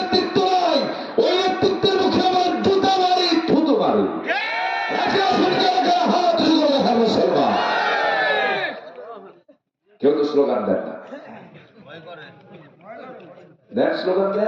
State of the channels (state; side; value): identical; both; correlation 1.00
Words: নাই, ওই নেতৃত্বের মুখে আমার জুতা মারি, স্লোগান দেন না, দেন স্লোগান